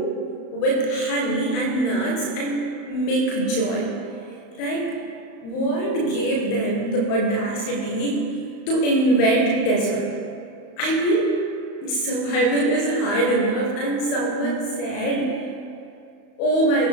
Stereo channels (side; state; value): right; late; 35 ms